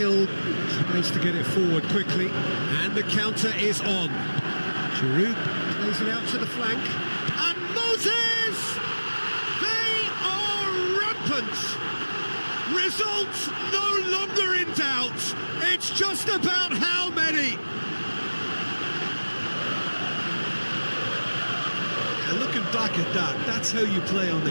tries to get it forward quickly, and the counter is on. Giroud plays it out to the flank, and Moses! They are rampant! Results no longer in doubt. It's just about how many. Looking back at that, that's how you play on the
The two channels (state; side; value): inverted; both; correlation -1.00